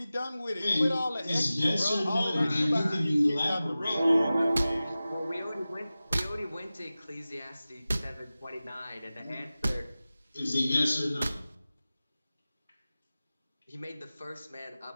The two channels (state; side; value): inverted; both; correlation -0.96